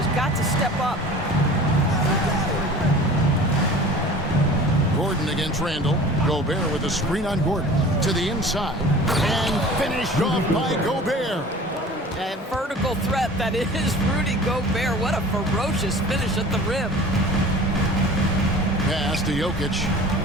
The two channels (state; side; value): normal; both; correlation 0.42